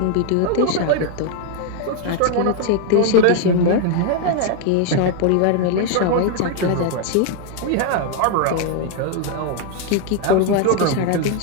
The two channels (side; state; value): both; different; correlation 0.00